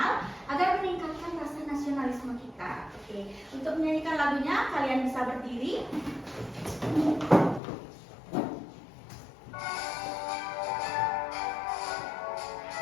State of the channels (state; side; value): drops out; right; at 7.6 s